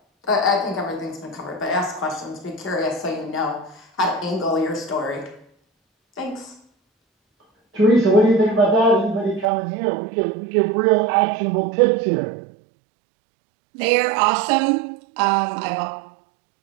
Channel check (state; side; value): drops out; left; at 9.5 s